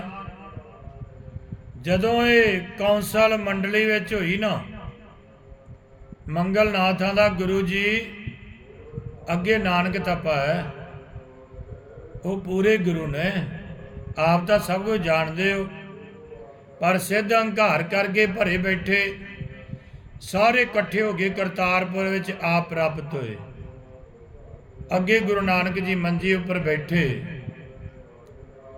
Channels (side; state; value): both; identical; correlation 1.00